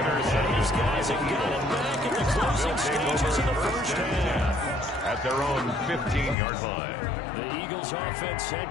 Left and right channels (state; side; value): drops out; right; at 6.4 s